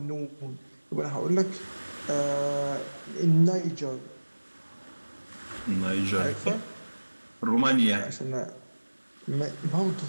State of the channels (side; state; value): both; inverted; correlation -1.00